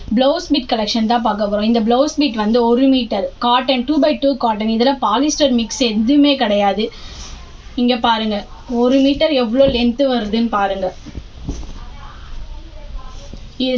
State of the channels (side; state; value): both; identical; correlation 1.00